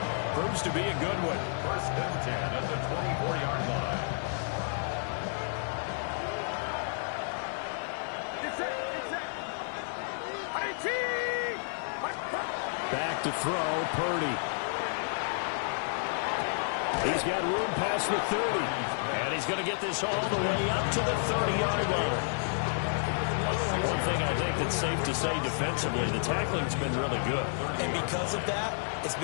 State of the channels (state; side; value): silent; right; digital silence